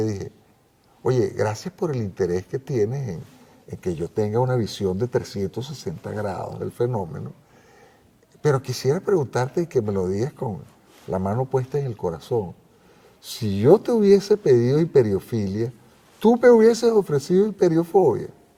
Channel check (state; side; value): identical; both; correlation 1.00